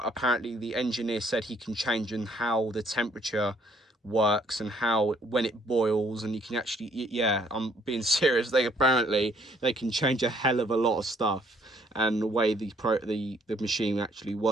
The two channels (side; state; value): both; normal; correlation 0.65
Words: apparently the engineer said he can change in how the temperature works and how, when it boils, and you can actually, yeah, I'm being serious, apparently they can change a hell of a lot of stuff, and the way the machine actually